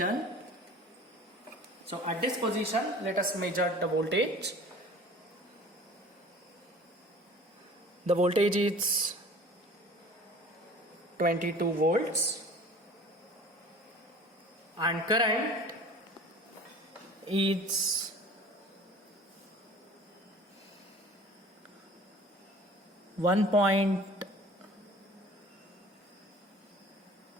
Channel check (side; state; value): both; normal; correlation 0.45